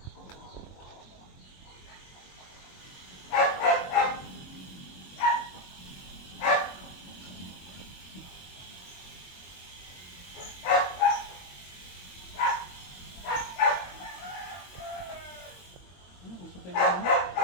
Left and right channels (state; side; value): late; right; 22 ms